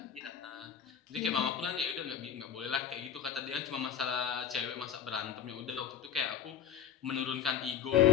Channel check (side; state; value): right; quieter; 8.5 dB